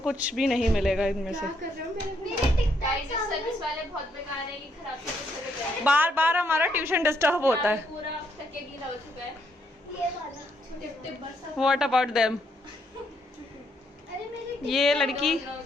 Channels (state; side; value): normal; both; correlation 0.74